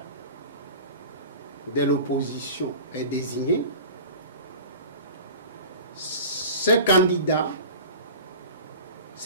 de l'opposition est désigné, ce candidat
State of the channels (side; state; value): both; inverted; correlation -0.38